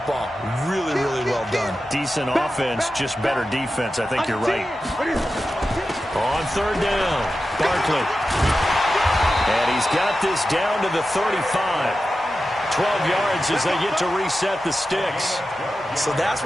Really, really well done. Decent offense, just better defense. I think you're right. On third down, Barkley. And he's got this down to the 35. 12 yards as they get to reset the sticks. So that's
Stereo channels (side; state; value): both; normal; correlation 0.92